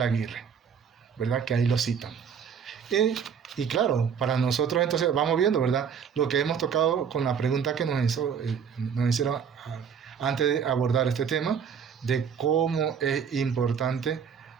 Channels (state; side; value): quieter; left; 7.1 dB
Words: Aguirre, ¿verdad? Que ahí lo citan. Y claro, para nosotros entonces vamos viendo, ¿verdad? Lo que hemos tocado con la pregunta que nos hicieron antes de abordar este tema, de cómo es importante